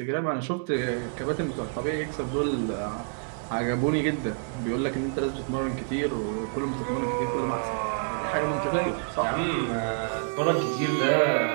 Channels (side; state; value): left; silent; 56 dB below the other